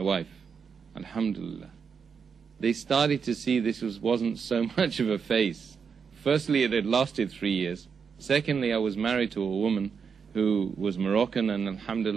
wife. Alhamdulillah. They started to see this wasn't so much of a phase. Firstly, it had lasted 3 years. Secondly, I was married to a woman who was Moroccan, and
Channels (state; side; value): quieter; left; 6.2 dB